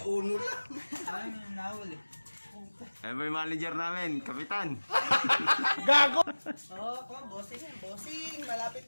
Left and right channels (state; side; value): inverted; both; correlation -1.00